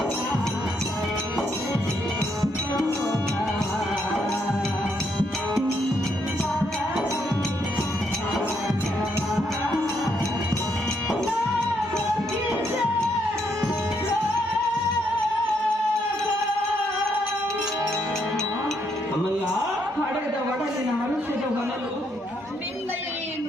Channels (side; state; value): both; normal; correlation 0.75